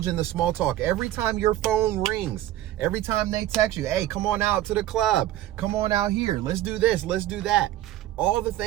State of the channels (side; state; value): left; quieter; 14.1 dB